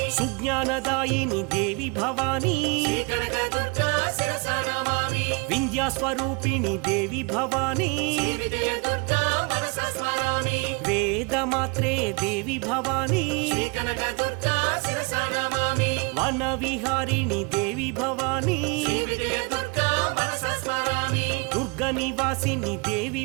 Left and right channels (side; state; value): left; quieter; 30.5 dB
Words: సుజ్ఞానదాయిని దేవి భవానీ శ్రీ కనక దుర్గా శిరసా నమామి వింధ్యాస్వరూపిణి దేవి భవానీ శ్రీ విజయ దుర్గా మనసా స్మరామి వేదమాత్రే దేవి భవానీ శ్రీ కనక దుర్గా శిరసా నమామి వన విహారిణి దేవి భవానీ శ్రీ విజయ దుర్గా మనసా స్మరామి దుర్గ నివాసిని దేవి